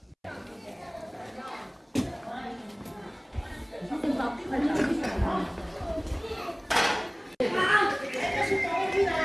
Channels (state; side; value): identical; both; correlation 1.00